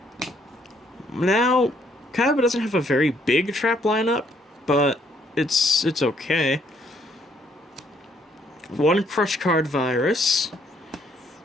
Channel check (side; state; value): both; normal; correlation 0.68